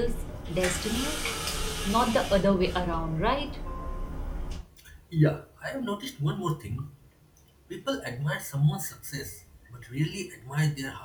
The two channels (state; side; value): identical; both; correlation 1.00